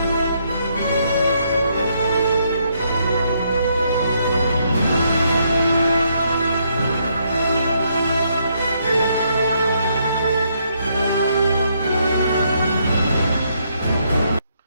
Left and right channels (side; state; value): both; inverted; correlation -0.74